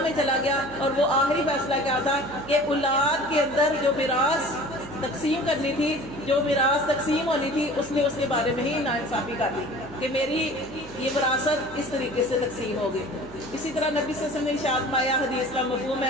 میں چلا گیا. اور وہ آخری فیصلہ کیا تھا کہ اولاد کے اندر جو میراث تقسیم کرنی تھی, جو میراث تقسیم ہونی تھی, اس نے اس کے بارے میں ہی ناانصافی کر دی کہ میری یہ وراثت اس طریقے سے تقسیم ہوگی. اسی طرح نبی صلی اللہ علیہ وسلم نے ارشاد فرمایا, حدیث کا مفہوم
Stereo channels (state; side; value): noise; right; hum, 19 dB below the sound